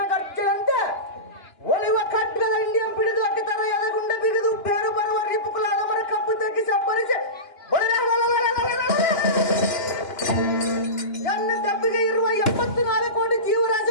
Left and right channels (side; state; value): right; late; 2.9 ms